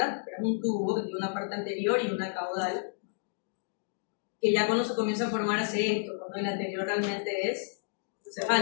Pero es un tubo que tiene una parte anterior y una caudal, que ya cuando se comienza a formar hace esto, cuando el anterior realmente es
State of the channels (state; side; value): silent; right; digital silence